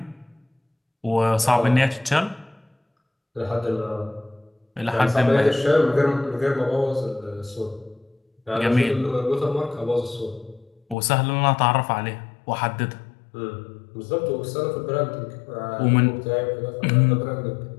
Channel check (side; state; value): right; drops out; at 11.0 s